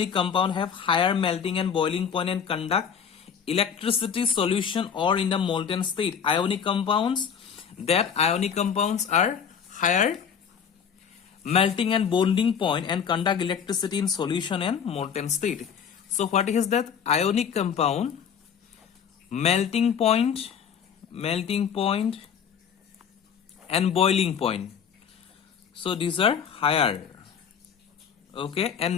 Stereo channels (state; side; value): quieter; right; 7.3 dB